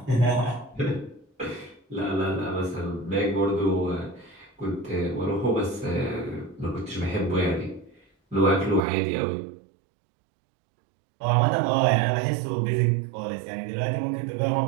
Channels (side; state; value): left; drops out; at 8.8 s